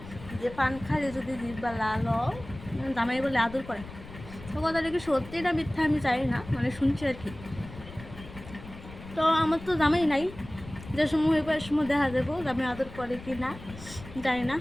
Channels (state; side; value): noise; left; rumble, 15 dB below the sound